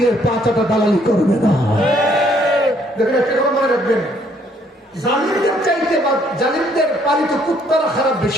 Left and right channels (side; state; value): both; normal; correlation 0.66